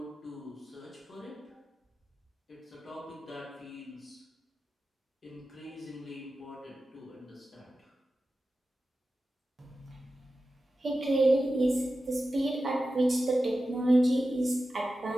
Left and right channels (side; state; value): both; normal; correlation 0.93